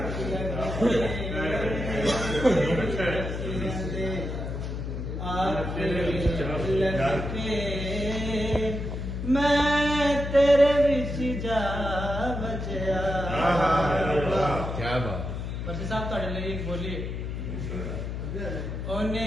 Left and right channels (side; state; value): left; noise; hum, 5 dB below the sound